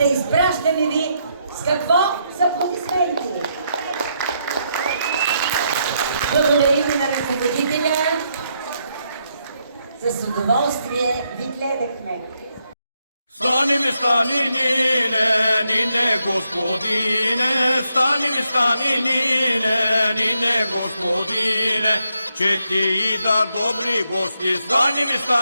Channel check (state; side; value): inverted; both; correlation -0.79